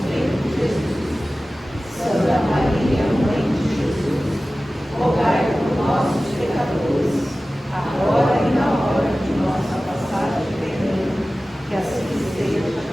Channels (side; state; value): both; normal; correlation 0.96